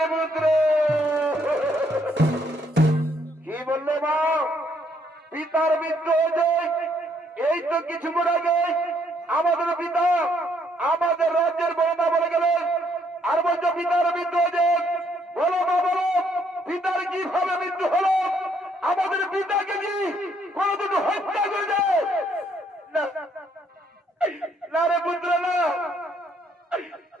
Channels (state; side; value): normal; both; correlation 0.69